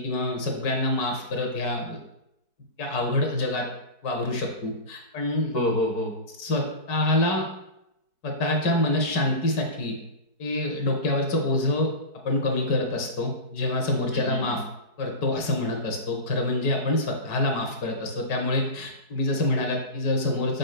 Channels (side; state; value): right; late; 4.6 ms